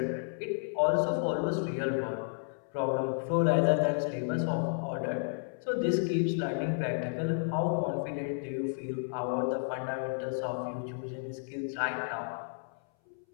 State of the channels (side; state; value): right; silent; 56 dB below the other